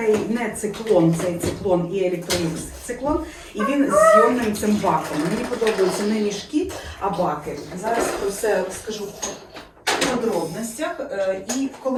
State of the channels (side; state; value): both; identical; correlation 1.00